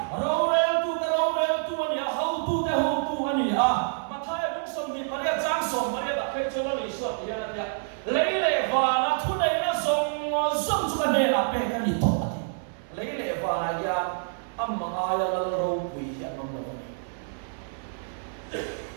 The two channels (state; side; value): silent; left; 60 dB below the other